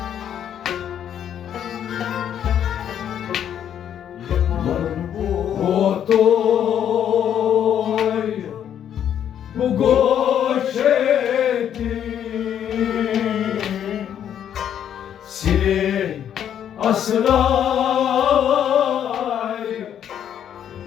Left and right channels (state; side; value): quieter; right; 9.6 dB